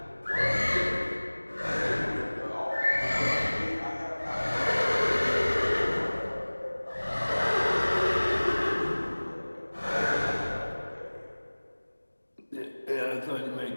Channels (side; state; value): both; inverted; correlation -1.00